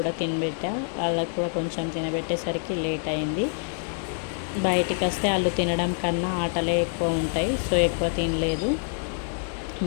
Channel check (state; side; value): silent; right; 61 dB below the other